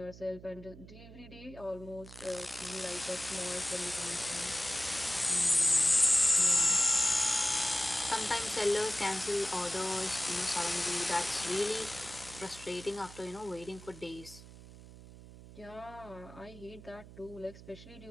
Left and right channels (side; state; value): right; noise; hum, 17 dB below the sound